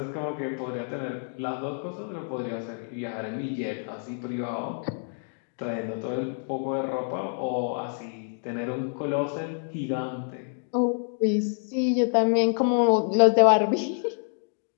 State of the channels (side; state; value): right; silent; 60 dB below the other